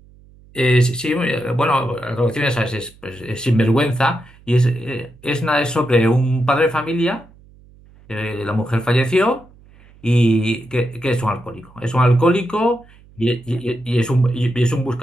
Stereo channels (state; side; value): noise; right; hum, 26 dB below the sound